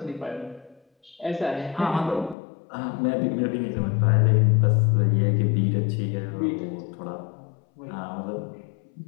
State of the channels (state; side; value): drops out; right; at 2.4 s